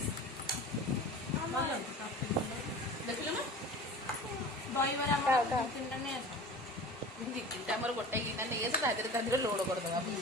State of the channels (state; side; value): normal; both; correlation 0.38